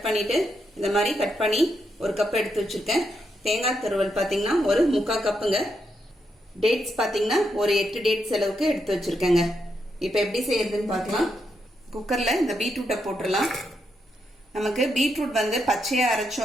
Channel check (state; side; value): normal; both; correlation 0.81